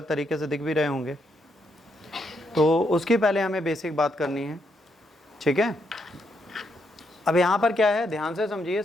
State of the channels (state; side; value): normal; both; correlation 0.78